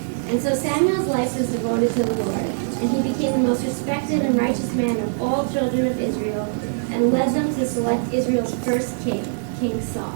And so Samuel's life was devoted to the Lord, and he became the most respected and righteous man of all children of Israel, and led them to select Israel's first king, King Saul.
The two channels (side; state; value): left; silent; 64 dB below the other